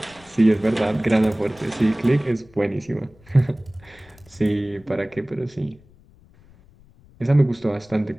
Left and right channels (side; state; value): left; noise; rumble, 27 dB below the sound